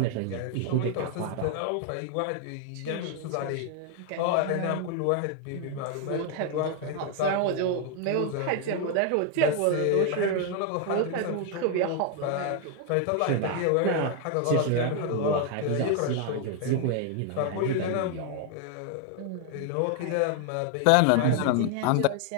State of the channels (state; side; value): different; both; correlation 0.01